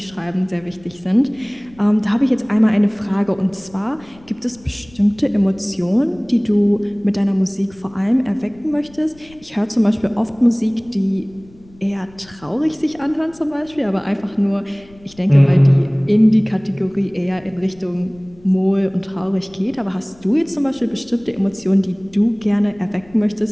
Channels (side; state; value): left; noise; rumble, 25 dB below the sound